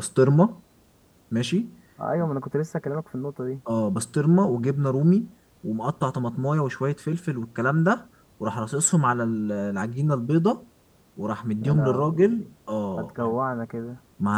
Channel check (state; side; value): identical; both; correlation 1.00